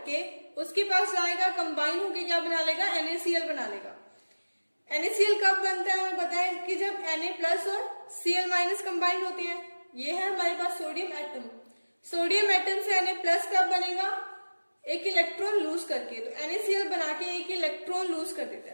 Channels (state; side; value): inverted; both; correlation -1.00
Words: उसके पास जाएगा, कंबाइन होके क्या बना लेगा? NaCl बना लेगा। NaCl कब बनता है? हमें पता है कि जब Na+ और Cl- कंबाइन होते हैं। ये है हमारे पास सोडियम एटम। सोडियम एटम से Na+ कब बनेगा? एक इलेक्ट्रॉन लूज करके, तो NaCl बना के एक इलेक्ट्रॉन लूज कर देता